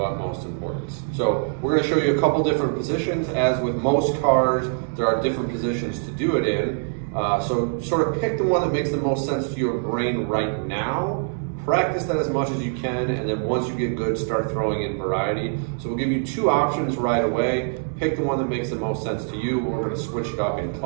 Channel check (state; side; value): silent; left; digital silence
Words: importance. So we're going to show you a couple different positions. As with most CARs, there are different positions to do it in. So sort of pick the one that makes the most sense to your brain right now. Practice that as much as you can, and then once you get good, start throwing in variety. So we'll give you two options right away. Pick the one that makes the most sense to you. We're going to switch it up in